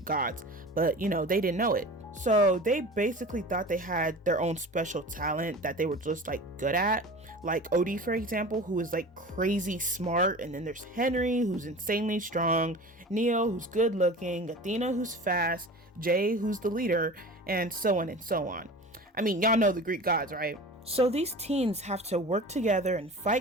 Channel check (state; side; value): normal; both; correlation 0.36